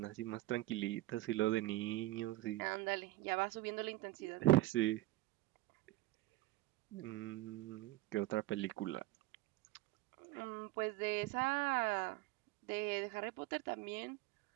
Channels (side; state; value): left; quieter; 17.6 dB